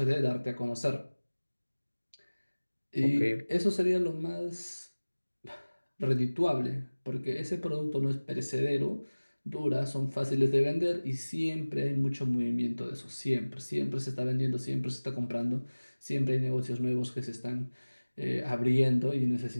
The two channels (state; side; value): inverted; both; correlation -1.00